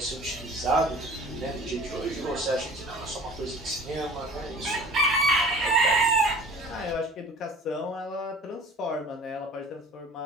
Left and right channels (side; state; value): both; normal; correlation 0.45